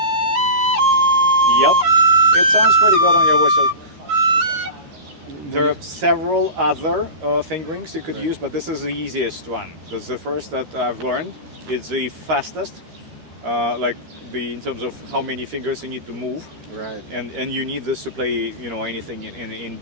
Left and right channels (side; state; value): left; late; 13 ms